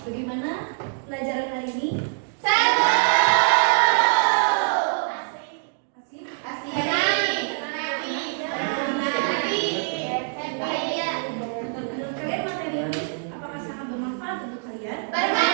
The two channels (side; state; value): left; silent; 62 dB below the other